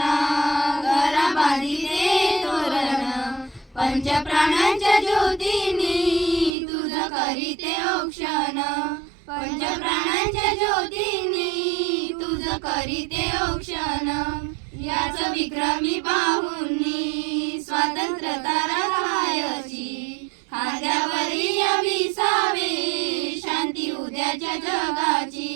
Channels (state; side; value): drops out; left; at 6.6 s